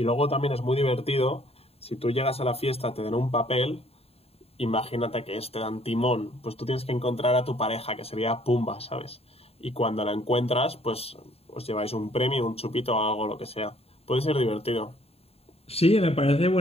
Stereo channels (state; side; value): late; right; 0.29 ms